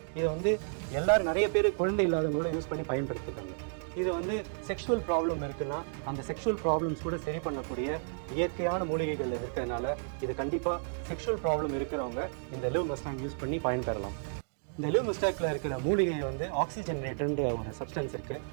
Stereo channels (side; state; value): left; silent; digital silence